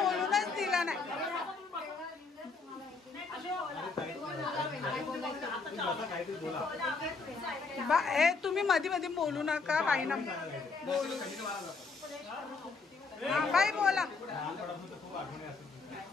दिला नाही. हे तुम्ही मध्ये मध्ये बोलू नका. बाईना बोलू. बाई बोला.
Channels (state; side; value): quieter; right; 4.5 dB